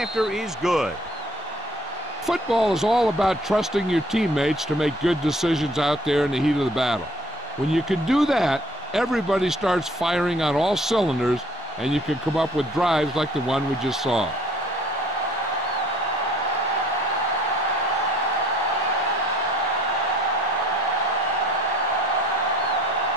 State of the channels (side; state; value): both; normal; correlation 0.57